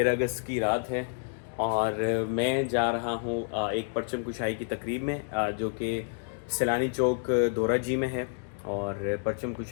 اگست کی رات ہے، اور میں جا رہا ہوں ایک پرچم کشائی کی تقریب میں جو کہ سیلانی چوک دورہ جی میں ہے. اور پرچم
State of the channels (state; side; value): silent; right; digital silence